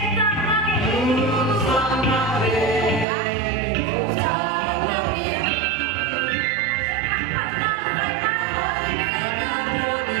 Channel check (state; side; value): drops out; left; at 3.1 s